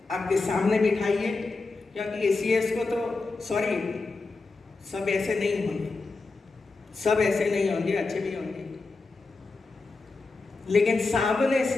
आपके सामने बिठाइए, क्योंकि एसीएस को तो सॉरी सब ऐसे नहीं होंगे, सब ऐसे नहीं होंगे, अच्छे भी होंगे, लेकिन सामने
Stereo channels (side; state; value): right; quieter; 3.8 dB